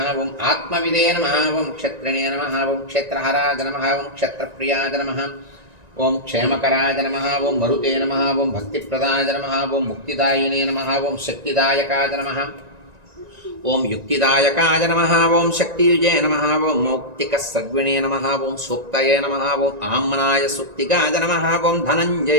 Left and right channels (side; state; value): left; late; 1.9 ms